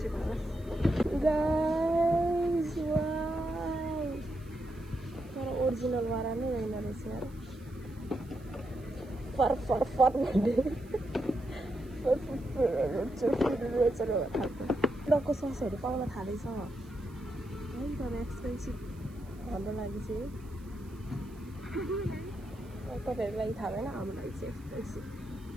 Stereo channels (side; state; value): right; noise; hiss, 28 dB below the sound